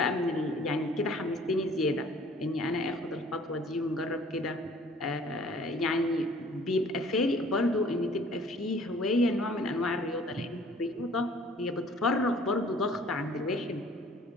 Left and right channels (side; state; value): both; normal; correlation 0.53